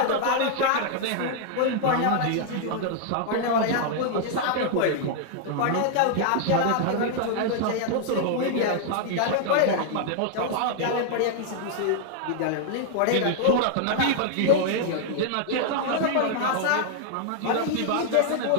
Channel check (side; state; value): both; different; correlation -0.01